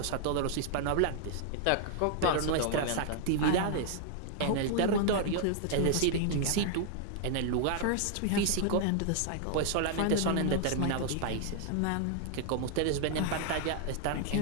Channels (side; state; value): both; different; correlation -0.01